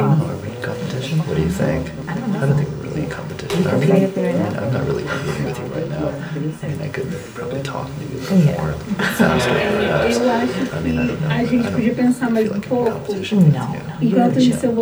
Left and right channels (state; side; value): identical; both; correlation 1.00